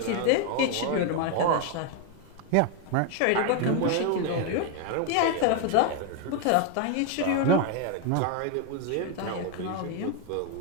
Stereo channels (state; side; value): different; both; correlation 0.01